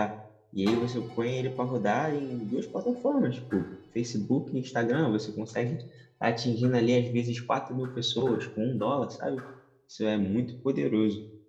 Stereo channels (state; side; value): identical; both; correlation 1.00